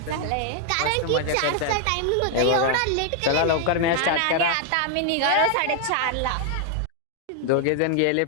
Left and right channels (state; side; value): different; both; correlation 0.00